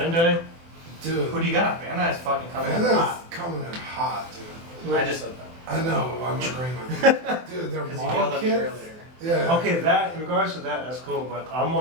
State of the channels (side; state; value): left; late; 24 ms